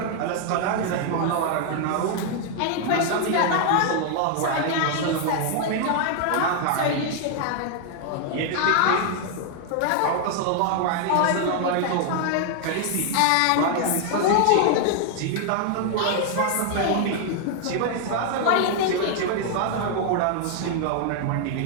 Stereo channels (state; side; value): different; both; correlation 0.00